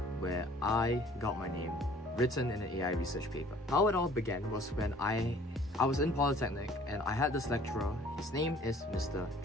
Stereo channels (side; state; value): both; normal; correlation 0.54